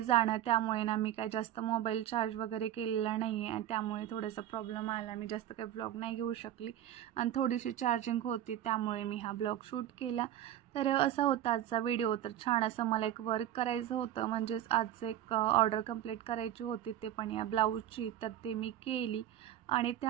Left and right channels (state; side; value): quieter; left; 12.0 dB